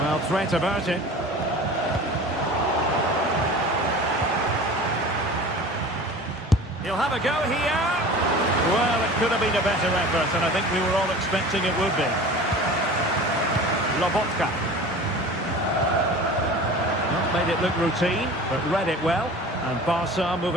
threat averted. He'll have a go here. Well, it could have been a better effort, and I think we were all expecting it would be. Lobotka. Not made it look routine, but read it well. And Barca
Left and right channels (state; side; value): normal; both; correlation 0.39